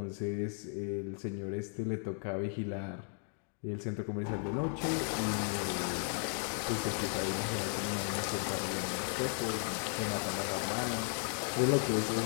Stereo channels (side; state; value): right; silent; 54 dB below the other